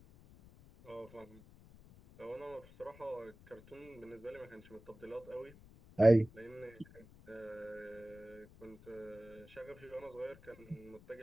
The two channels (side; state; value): left; noise; rumble, 21 dB below the sound